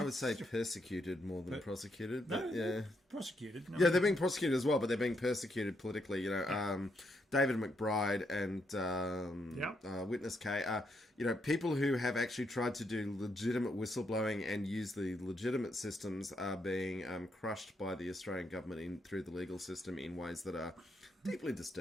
would say persecuted more than prosecuted, but yeah, prosecuted. No, yeah, they're being prosecuted as well, but they're being persecuted politically. You know, David McBride and Witness K. People who have actually tried to do legitimate whistleblowing and use the legitimate systems are being crushed by the Australian government through the legal system in ways that are deeply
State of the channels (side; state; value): both; normal; correlation 0.77